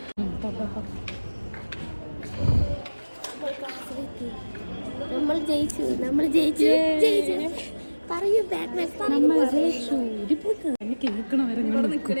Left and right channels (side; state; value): both; inverted; correlation -1.00